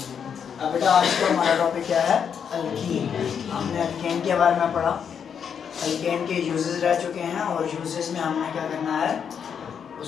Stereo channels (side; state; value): right; quieter; 7.4 dB